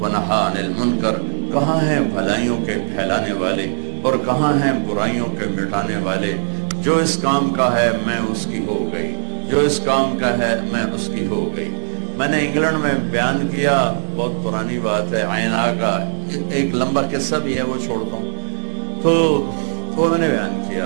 ونہا عن المنکر. کہاں ہیں بھلائیوں کے پھیلانے والے اور کہاں ہیں برائیوں کے مٹانے والے؟ جو اس کام کا ہے میں اس کی ہو گئی، جو اس کام کا ہے میں اس کی ہو گئی. میں نے انگلینڈ میں بیان کیا، بہت پرانی بات ہے، عینا کا ایک لمبا قصہ بھی ہے، وہ چھوڑتا ہوں. تو وہ میں نے بیان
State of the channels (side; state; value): left; silent; digital silence